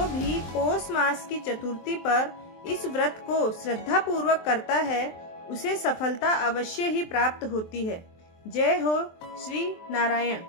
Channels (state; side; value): late; right; 23 ms